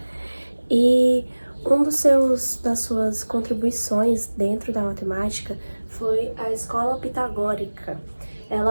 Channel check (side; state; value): both; inverted; correlation -1.00